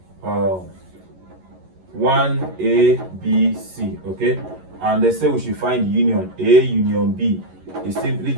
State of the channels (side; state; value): left; late; 11 ms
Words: 1, A, B, C, okay, and they say we should find union A union B is simply